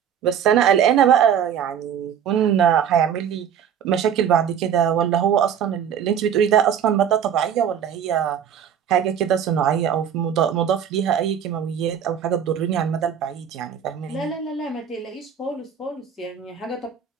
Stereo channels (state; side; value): quieter; left; 8.6 dB